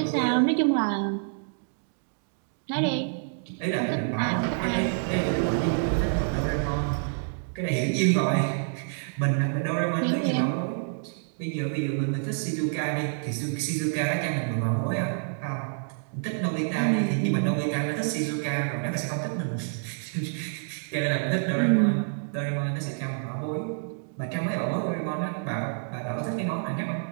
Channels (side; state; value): left; silent; digital silence